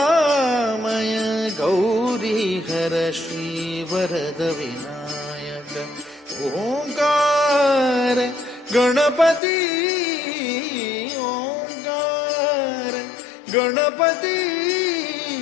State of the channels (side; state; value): right; drops out; at 9.4 s